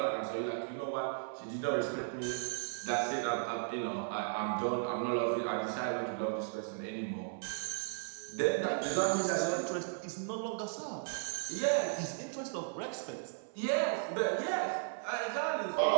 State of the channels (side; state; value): left; silent; 54 dB below the other